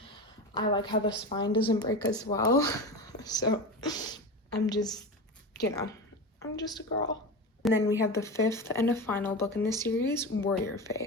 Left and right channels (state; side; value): normal; both; correlation 0.25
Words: I like how the spine doesn't break as well. So I'm just, you know, I'm just a girl. And then we have the 5th and a final book in this series, Warrior